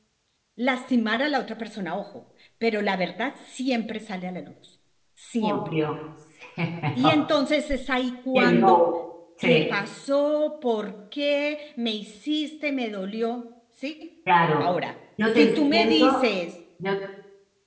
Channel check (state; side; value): identical; both; correlation 1.00